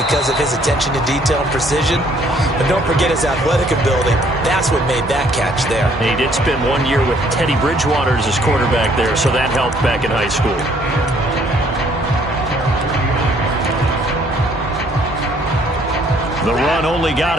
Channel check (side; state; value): both; normal; correlation 0.63